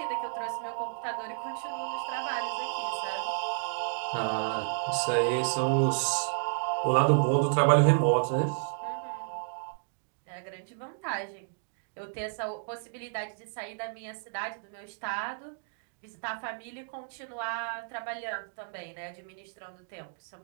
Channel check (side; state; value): left; silent; digital silence